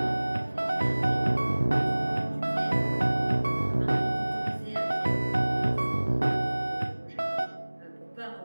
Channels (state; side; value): inverted; both; correlation -1.00